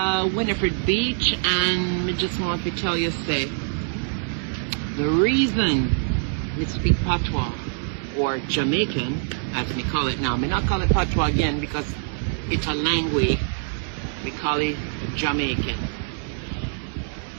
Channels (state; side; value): silent; left; digital silence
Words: Winifred Beach, and me just want to tell you, say, the reason we speak Patois, or Jamaican, as me call it now. Me not call it Patois again because it's a language. We call it Jamaican.